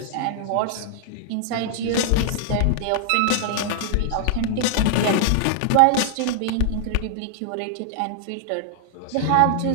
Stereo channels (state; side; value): different; both; correlation -0.01